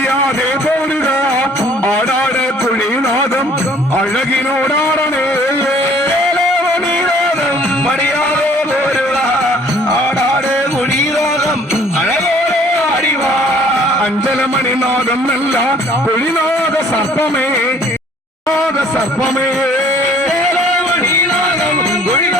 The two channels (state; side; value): normal; both; correlation 0.56